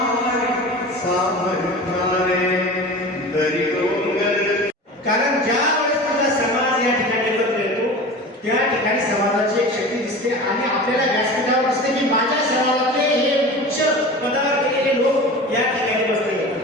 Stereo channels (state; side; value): normal; both; correlation 0.34